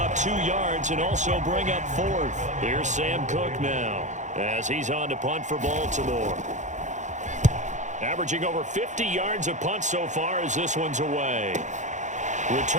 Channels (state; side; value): late; left; 0.35 ms